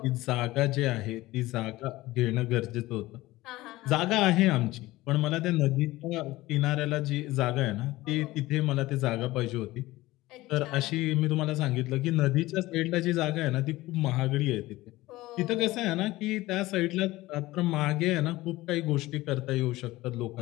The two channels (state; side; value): quieter; right; 18.3 dB